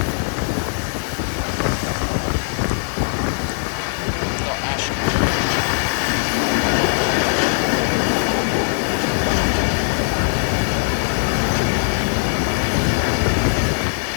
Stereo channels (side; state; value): right; silent; digital silence